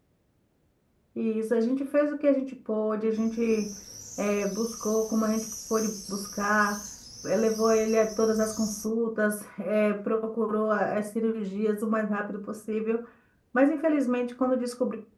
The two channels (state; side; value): identical; both; correlation 1.00